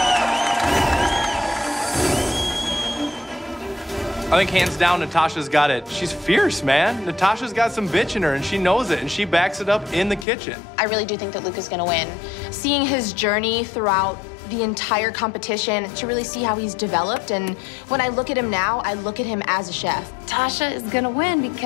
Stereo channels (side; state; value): right; drops out; at 10.2 s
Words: I think hands down, Natasha's got it. She's fierce, man. Natasha's got some bitch in her, and she knows it, and she backs it up in the kitchen. I really do think that Luca's gonna win. Seeing his journey throughout the entire competition to really see how he's developed, and when I look at him now, I look at him as a chef. Tasha is gonna win